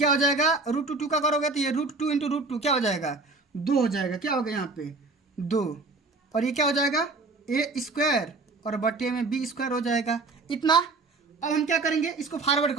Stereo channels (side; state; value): left; quieter; 3.6 dB